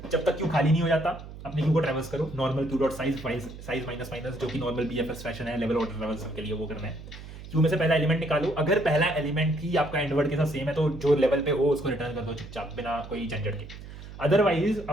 जब तक क्यू खाली नहीं हो जाता अपने क्यू को ट्रेवर्स करो, normal Q dot size minus minus, जो कि नॉर्मल बीएफएस फैशन है लेवल ऑर्डर ट्रेवर्सल के लिए, वो करना है। क्यू में से पहला एलिमेंट निकालो, अगर पहला एलिमेंट ही आपका एंड वर्ड के साथ सेम है तो जो लेवल पे हो उसको रिटर्न कर दो चुपचाप, बिना कोई झंझट के। अदरवाइज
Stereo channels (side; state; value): right; noise; hum, 14 dB below the sound